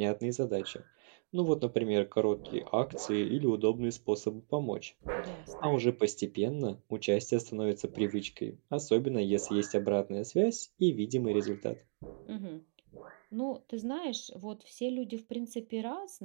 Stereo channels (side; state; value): left; silent; digital silence